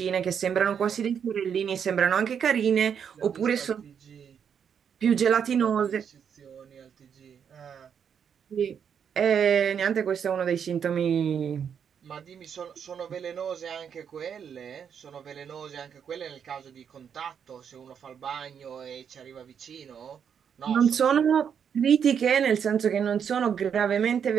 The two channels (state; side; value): quieter; left; 7.7 dB